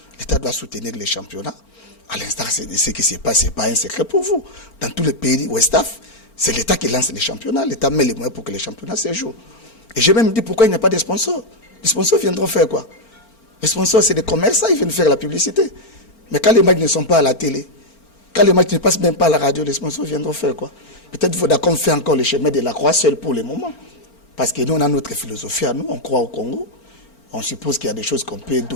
l'État doit soutenir les championnats. À l'instar de ce qui se passe, ce n'est pas un secret pour vous. Dans tous les pays Ouest-Af, c'est l'État qui lance les championnats. L'État met les moyens pour que les championnats se jouent. Et j'ai même dit pourquoi il n'y a pas de sponsors. Les sponsors viendront faire quoi? Les sponsors, c'est des commerçants, ils viennent faire la publicité. Mais quand les matchs ne sont pas à la télé, quand les matchs ne passent même pas à la radio, les sponsors viendront faire quoi? Peut-être qu'il faudra qu'on fait encore le chemin de la croix seul pour le moment. Parce que nous, on a notre philosophie à nous, on croit au Congo. On suppose qu'il y a des choses qu'on peut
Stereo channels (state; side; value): late; right; 4.4 ms